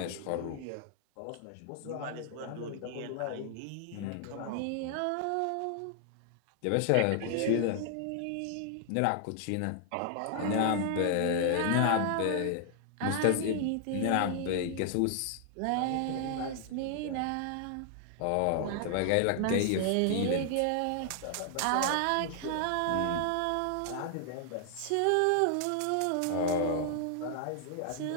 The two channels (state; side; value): different; both; correlation 0.00